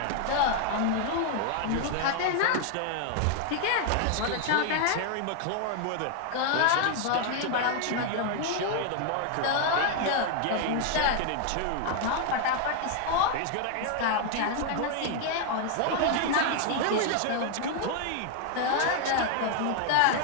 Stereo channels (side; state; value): both; different; correlation 0.00